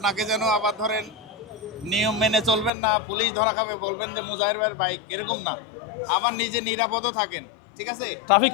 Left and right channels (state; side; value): drops out; right; at 2.7 s